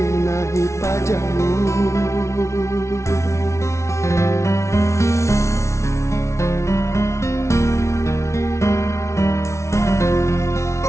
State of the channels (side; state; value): right; late; 0.13 ms